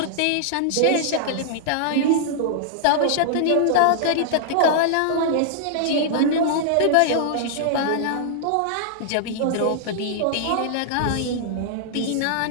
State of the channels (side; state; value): both; different; correlation -0.01